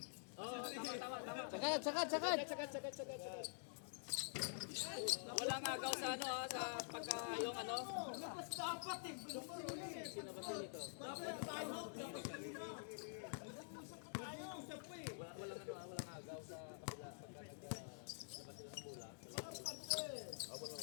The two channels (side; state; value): right; silent; digital silence